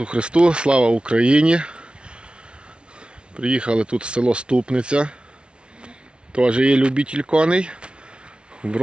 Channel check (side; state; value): left; late; 0.057 ms